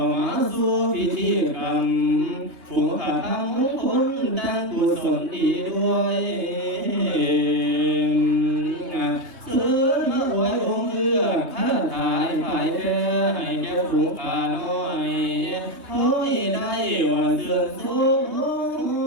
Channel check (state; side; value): late; left; 3.2 ms